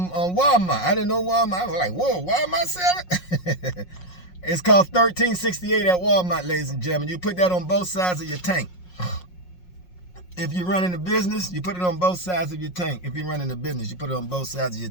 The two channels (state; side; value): late; right; 5.5 ms